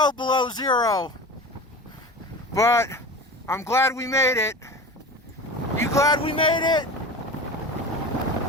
below zero. But I'm glad we made it. You glad we made it?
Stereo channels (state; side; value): normal; both; correlation 0.33